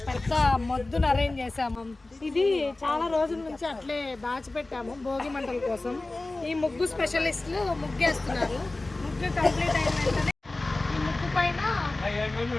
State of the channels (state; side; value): quieter; right; 3.0 dB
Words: పెద్ద మొద్దును అరేంజ్ చేసాము. ఇది చాలా రోజుల నుంచి అట్లే దాచిపెట్టాము భోగి మంటల కోసం. ఈ ముగ్గు స్పెషలిస్టులు ముగ్గేస్తున్నారు. ముగ్గు కంప్లీట్ అయిన వెంటనే ఈ ముగ్గు పైన